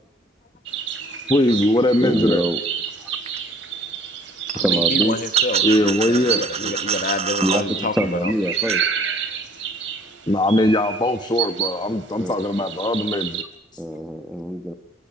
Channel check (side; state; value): both; normal; correlation 0.56